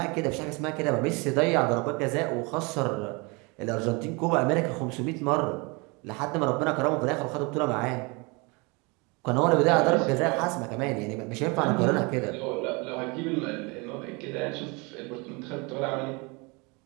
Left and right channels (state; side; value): quieter; left; 28.5 dB